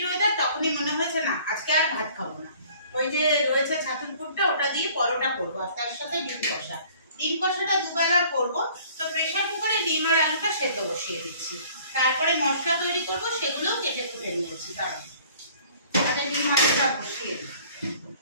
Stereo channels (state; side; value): inverted; both; correlation -0.53